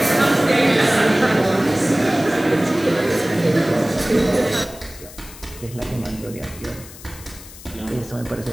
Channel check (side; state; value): left; noise; hiss, 17 dB below the sound